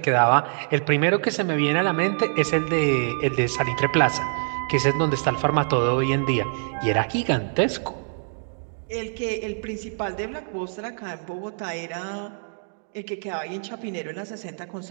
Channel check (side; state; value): left; silent; digital silence